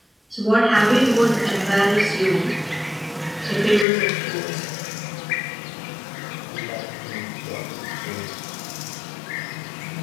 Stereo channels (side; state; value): right; drops out; at 3.9 s